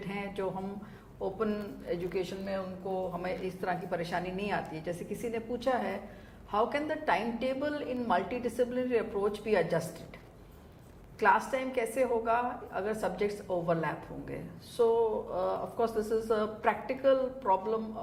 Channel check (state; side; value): identical; both; correlation 1.00